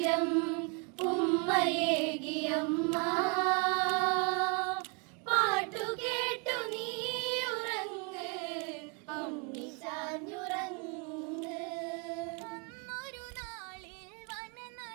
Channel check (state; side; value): quieter; left; 34.1 dB